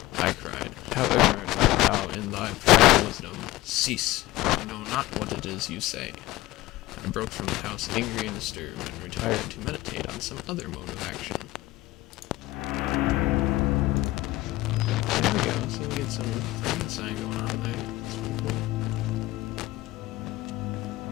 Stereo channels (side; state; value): right; quieter; 18.0 dB